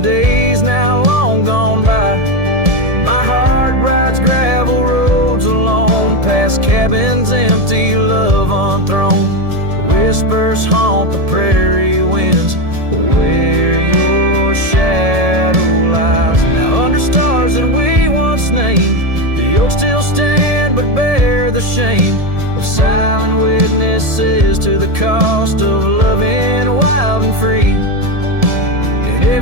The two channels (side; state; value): left; late; 1.7 ms